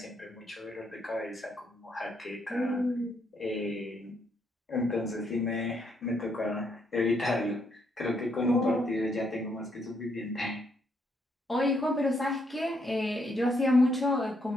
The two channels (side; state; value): both; normal; correlation 0.74